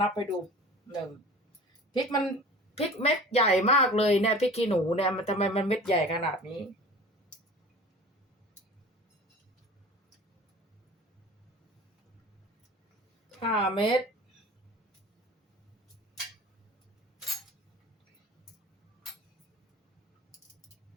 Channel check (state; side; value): normal; both; correlation 0.41